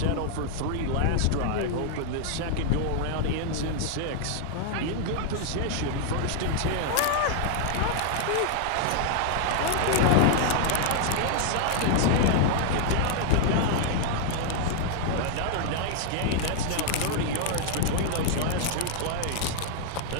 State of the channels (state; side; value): different; both; correlation 0.00